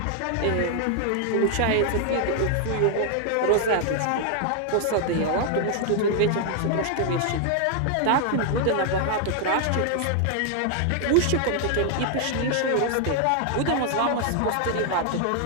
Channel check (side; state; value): both; different; correlation 0.00